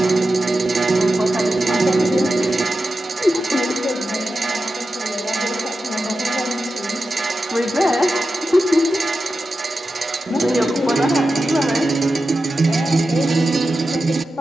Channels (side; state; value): both; normal; correlation 0.91